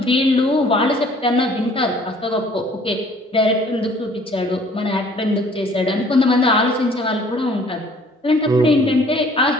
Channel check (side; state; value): both; normal; correlation 0.55